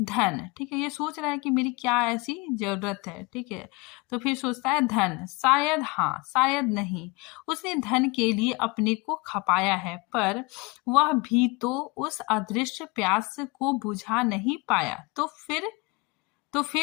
धन, ठीक है, ये सोच रहा है कि मेरी क्या ऐसी जरूरत है। ठीक है, तो फिर सोचता है धन, शायद हाँ, शायद नहीं। उसने धन के लिए अपने को खपाया है, पर वह भी तो उस अदृश्य प्यास को बुझा नहीं पाया। तो फिर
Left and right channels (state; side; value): quieter; right; 26.6 dB